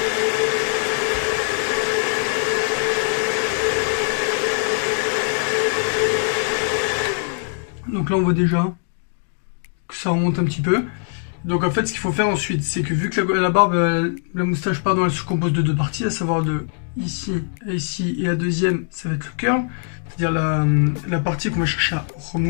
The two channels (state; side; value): silent; right; 59 dB below the other